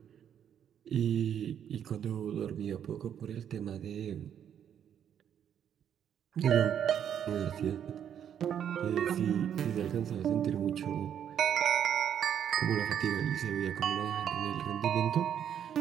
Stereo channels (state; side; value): quieter; left; 9.1 dB